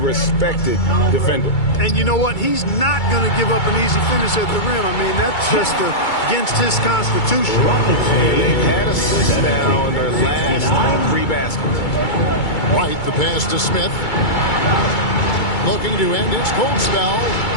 defender. And you know what? He's not going to give up an easy finish at the rim. I mean, that's just against his constitution. And they've had assists now in their last 3 baskets. Right, the pass to Smith. Looking to end his cold spell.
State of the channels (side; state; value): right; late; 2.3 ms